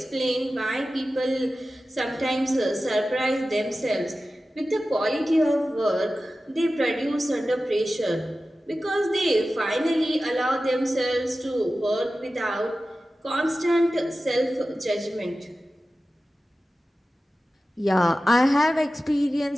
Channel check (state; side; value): normal; both; correlation 0.94